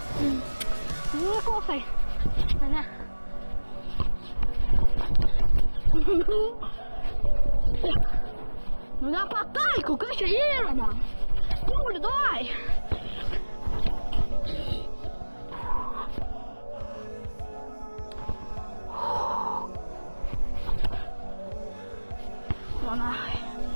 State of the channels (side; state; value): both; inverted; correlation -1.00